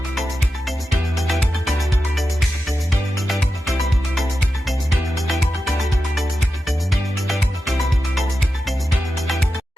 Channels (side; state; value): both; normal; correlation 0.91